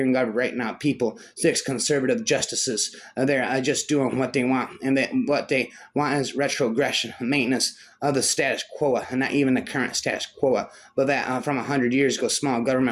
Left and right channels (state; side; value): identical; both; correlation 1.00